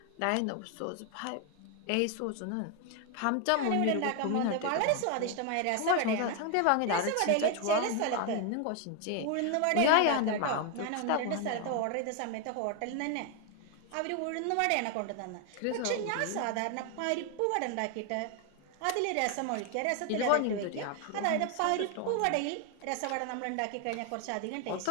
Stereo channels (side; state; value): both; different; correlation 0.01